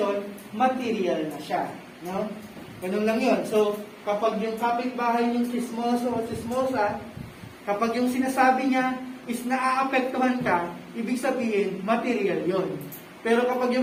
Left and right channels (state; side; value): identical; both; correlation 1.00